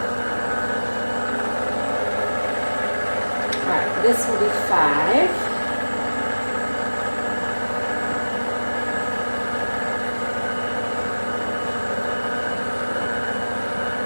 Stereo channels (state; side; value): inverted; both; correlation -1.00